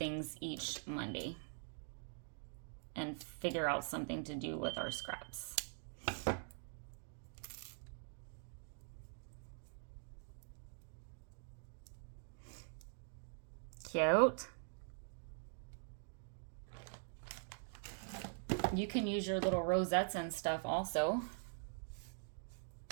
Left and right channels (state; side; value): silent; left; digital silence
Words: each Monday and figure out something to do with our scraps. Cute. You can use your little rosettes and stuff also.